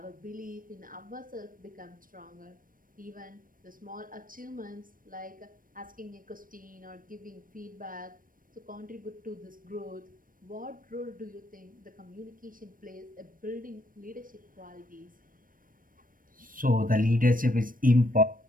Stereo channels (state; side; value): late; left; 0.40 ms